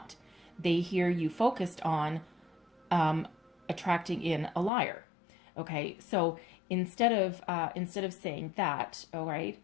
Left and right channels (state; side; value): drops out; right; at 4.7 s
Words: They hear you focused on attracting in a liar. Okay, so instead of saying that, all right,